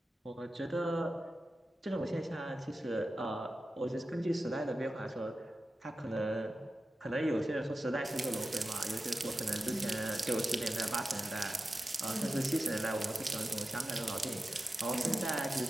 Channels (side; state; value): both; normal; correlation 0.92